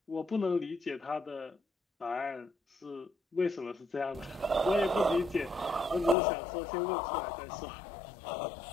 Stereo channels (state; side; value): drops out; right; at 6.2 s